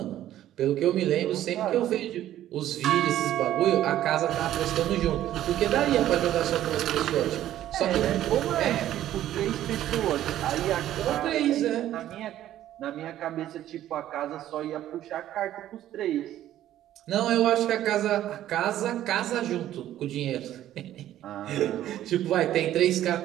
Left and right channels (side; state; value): left; quieter; 12.6 dB